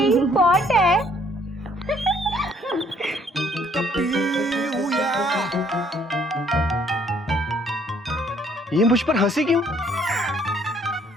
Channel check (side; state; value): both; normal; correlation 0.63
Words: പോട്ടെ. ये मुझ पर हंसी क्यों?